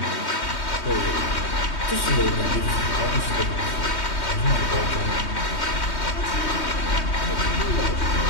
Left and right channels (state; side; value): late; right; 3.2 ms